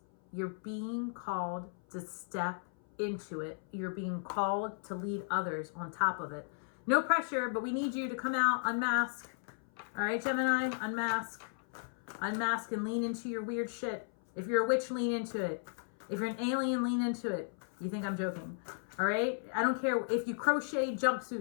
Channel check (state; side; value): silent; right; 54 dB below the other